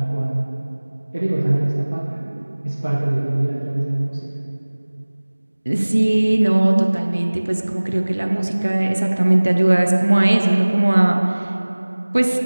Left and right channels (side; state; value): both; inverted; correlation -1.00